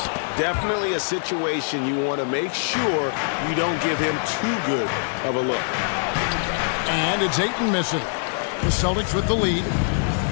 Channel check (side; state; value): right; silent; digital silence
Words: Definitely a situation you want to make sure you don't give him too good of a look. And it's Ayton missing. The Celtics with the lead.